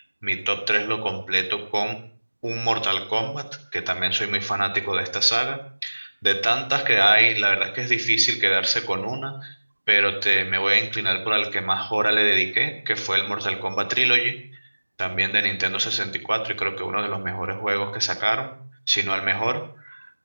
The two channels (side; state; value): both; inverted; correlation -1.00